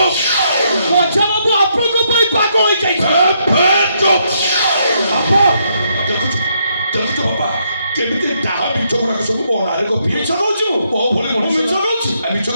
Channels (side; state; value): both; inverted; correlation -0.75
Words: ମଝିବାବୁ ଆପଣଙ୍କ ପାଇଁ ପାଗଳ ହେଇଯାଇଛନ୍ତି ଦେଖୁଛୁ ବାପା କେମିତି ତାହା ମିଛ ଗୁଡାକ ସବୁ ମୋ ନାଁରେ ଗପି ମିଛ କହୁଛୁ ମୋ ଭଳି ମଣିଷ ମିଛ କହୁଛି